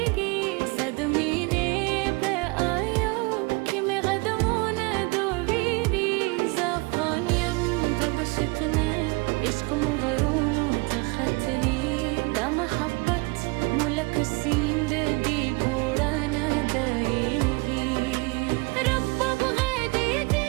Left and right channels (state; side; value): quieter; left; 27.5 dB